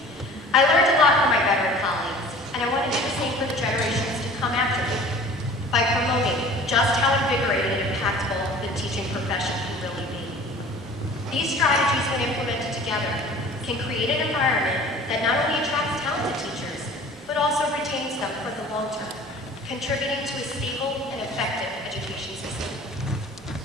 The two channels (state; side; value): normal; both; correlation 0.45